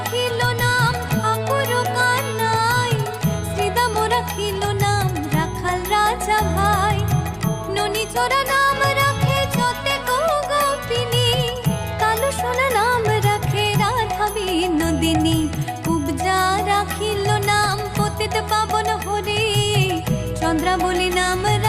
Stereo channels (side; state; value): both; identical; correlation 1.00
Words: নাম ঠাকুর কানাই, শ্রীদাম রাখিল নাম রাখাল রাজা ভাই। ননীচরা নাম রাখে যতে গোপিনী, কালো সোনা নাম রাখে রাধা বিনোদিনী। কুবজা রাখিল নাম পতিত পাবন হরি, চন্দ্রাবলী নাম